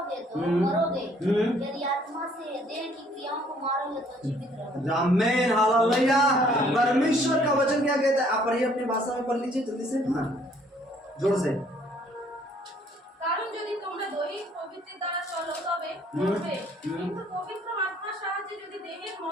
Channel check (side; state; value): both; normal; correlation 0.62